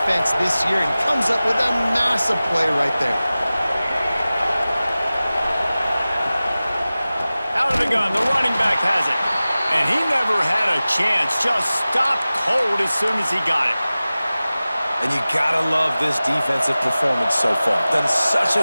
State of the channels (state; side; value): inverted; both; correlation -0.97